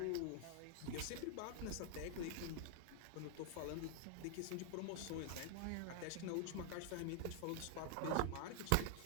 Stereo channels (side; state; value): both; different; correlation 0.00